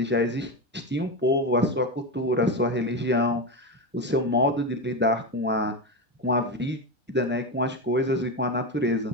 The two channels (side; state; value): both; normal; correlation 0.15